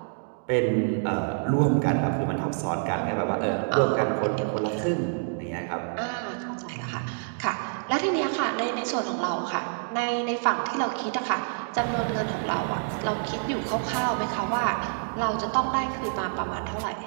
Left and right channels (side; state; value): left; silent; digital silence